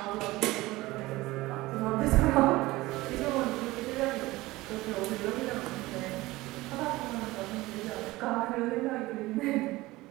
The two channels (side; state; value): left; quieter; 19.4 dB